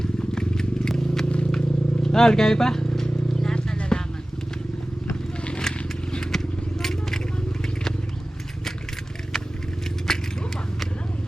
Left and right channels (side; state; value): both; normal; correlation 0.97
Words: Kaya pa? Lahat na lalaman.